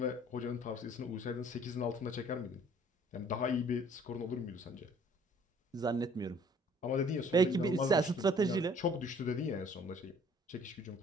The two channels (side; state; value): both; normal; correlation 0.57